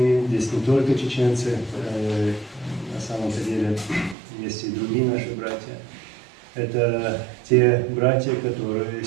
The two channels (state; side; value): drops out; left; at 4.2 s